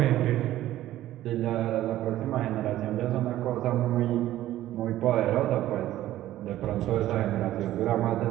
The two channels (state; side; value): quieter; left; 14.1 dB